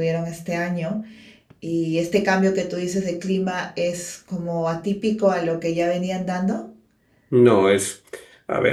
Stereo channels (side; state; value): both; identical; correlation 1.00